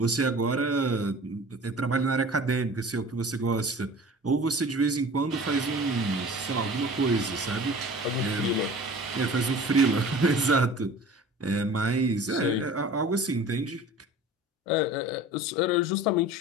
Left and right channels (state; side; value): normal; both; correlation 0.41